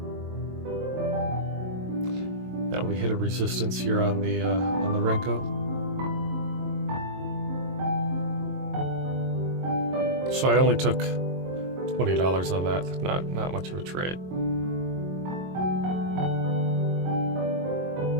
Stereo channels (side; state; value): left; late; 22 ms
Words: Now we hit a resistance here on the Renko. So I only took $20 on that. Not much of a trade.